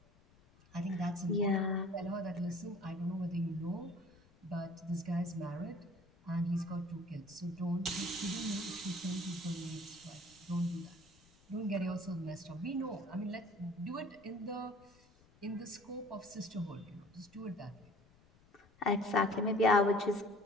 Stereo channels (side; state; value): left; noise; rumble, 28 dB below the sound